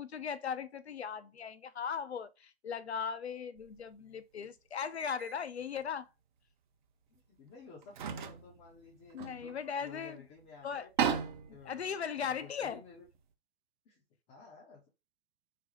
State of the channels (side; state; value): both; normal; correlation 0.08